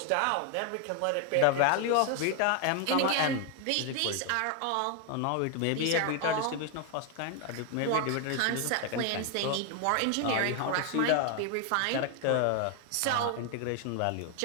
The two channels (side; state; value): both; different; correlation 0.00